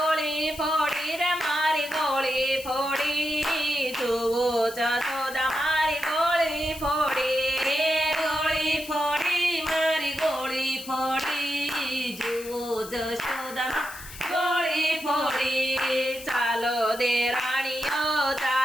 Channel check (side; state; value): left; noise; hiss, 14 dB below the sound